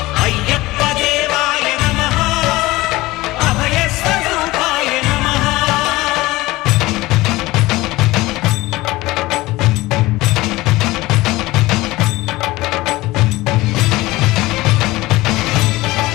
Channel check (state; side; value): quieter; right; 19.4 dB